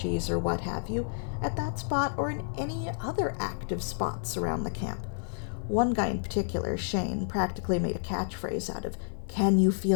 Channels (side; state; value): right; silent; digital silence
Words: or what have you at that spot or in any other active spots around the camp. One guy in particular, Shane, practically made a catchphrase out of, "Can you